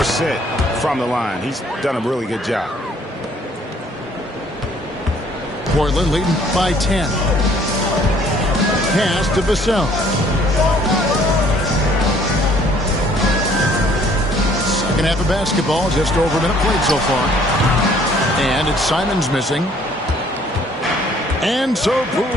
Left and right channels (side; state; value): both; normal; correlation 0.60